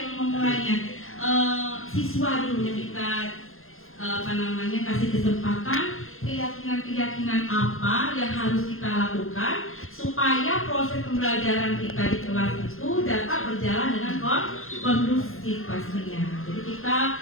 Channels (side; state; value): right; late; 0.61 ms